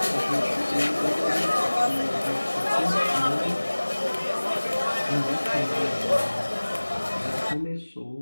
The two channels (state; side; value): inverted; both; correlation -1.00